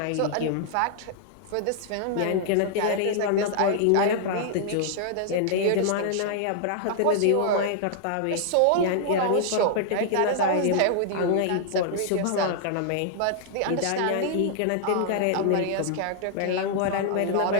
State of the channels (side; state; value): both; different; correlation -0.01